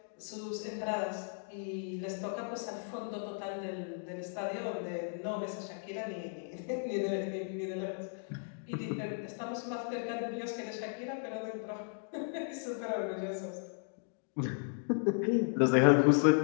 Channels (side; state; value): right; silent; digital silence